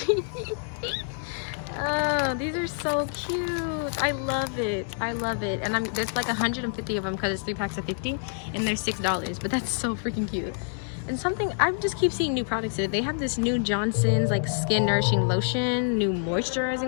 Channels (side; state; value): right; silent; 60 dB below the other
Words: Oh, these are so cute. I love it. And there's like 150 of them because it's 3 packs of 50, and they're $6, but that's so freaking cute. And something, I just keep seeing new products there. They have this new Johnson's like skin nourishing lotion, new